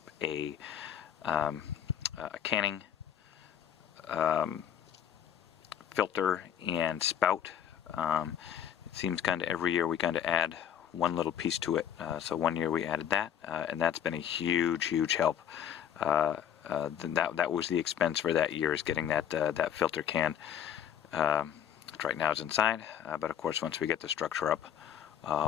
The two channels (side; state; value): right; quieter; 9.4 dB